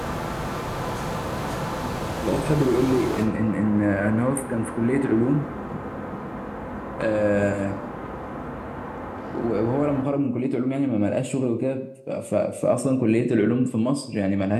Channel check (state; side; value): identical; both; correlation 1.00